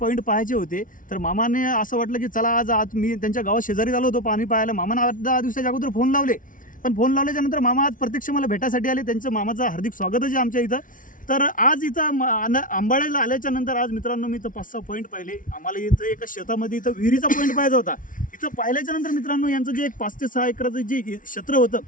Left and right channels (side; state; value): right; late; 0.38 ms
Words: पॉईंट पाहायचे होते. तर मामाने असं वाटलं की चला आज मी त्यांच्या गावात शेजारी आलो होतो पाणी पाहायला. मामाने 8-10 दिवसाच्या अगोदर फोन लावले. पण फोन लावल्याच्या नंतर मामा आज प्रत्यक्ष मला भेटायसाठी आले. त्यांचं मामाचं हार्दिक स्वागतच आहे आमच्या इथं. तर आज इथं आंबाळ्याला आल्याच्या नंतर आज मित्रांनो मी इथं 5-6 पॉईंट पाहिले. आम्हाला इथं एका शेतामध्ये इथं विहिरीचा पॉईंट पाहायचा होता. इथं पाहिल्याच्या नंतर मित्रांनो यांचं जे एक 5 ते 6 एकराचं जे क्षेत्र